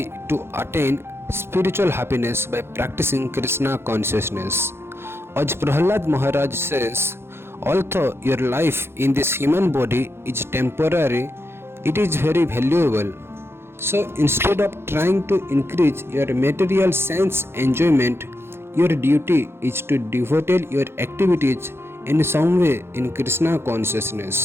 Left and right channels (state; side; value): late; left; 0.12 ms